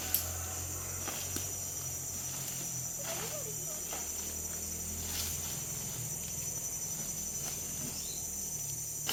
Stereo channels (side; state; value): both; identical; correlation 1.00